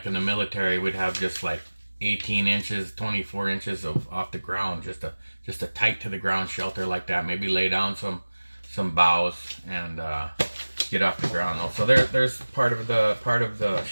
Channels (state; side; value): inverted; both; correlation -1.00